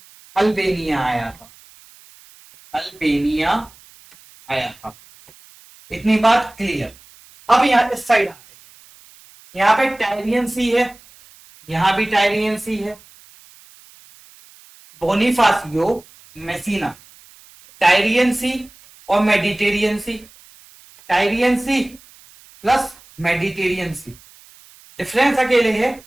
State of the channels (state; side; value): noise; right; hiss, 25 dB below the sound